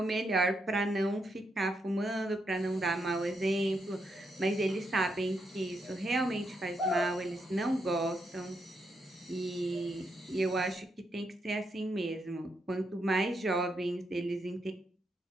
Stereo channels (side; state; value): both; normal; correlation 0.80